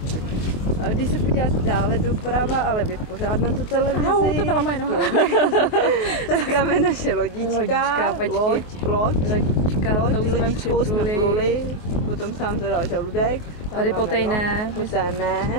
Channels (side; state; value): right; late; 24 ms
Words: A když se podíváte dále doprava, ale vy pořád na tu televizi. To byla moje noha. Tak tam je naše lodička. Lodička, to už jsme připluli. Potom sám zadal žaludek. Tady potejné.